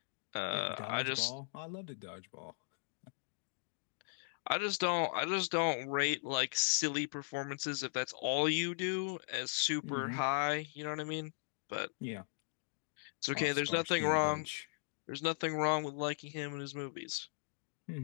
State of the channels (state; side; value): silent; right; digital silence